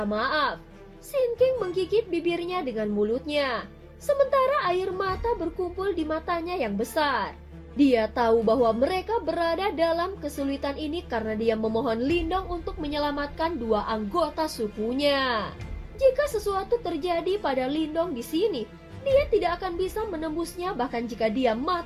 maaf. Sin King menggigit bibirnya dengan mulutnya, sementara air mata berkumpul di matanya yang besar. Dia tahu bahwa mereka berada dalam kesulitan ini karena dia memohon Lindong untuk menyelamatkan 2 anggota sukunya. Jika sesuatu terjadi pada Lindong di sini, dia tidak akan bisa menembusnya bahkan jika dia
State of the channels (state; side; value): identical; both; correlation 1.00